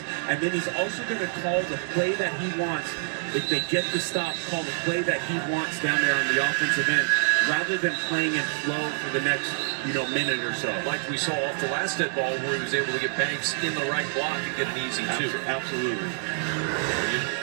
and then he's also going to call the play that he wants. If they get the stop, call the play that he wants down there on the offensive end, rather than playing in flow for the next, minute or so. Like we saw off the last dead ball where he was able to get Banks in the right block and get an easy 2. Absolutely.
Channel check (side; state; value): left; silent; digital silence